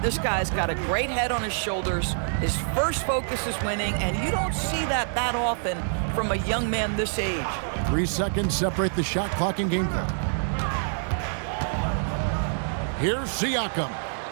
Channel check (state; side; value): silent; left; digital silence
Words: This guy's got a great head on his shoulders. His first focus is winning, and you don't see that often from a young man this age. 3 seconds separate the shot clock and game clock. Here's Siakam.